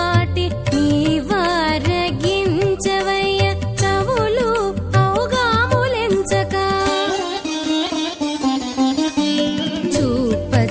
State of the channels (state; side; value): identical; both; correlation 1.00